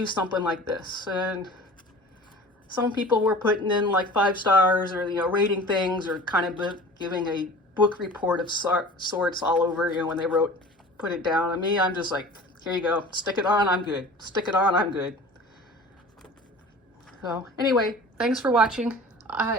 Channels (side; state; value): both; normal; correlation 0.41